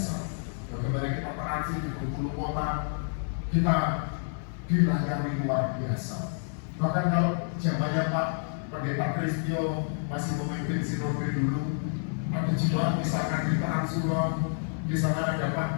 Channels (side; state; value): right; silent; 59 dB below the other